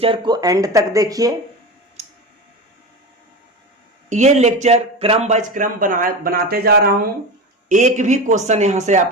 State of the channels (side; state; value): both; normal; correlation 0.24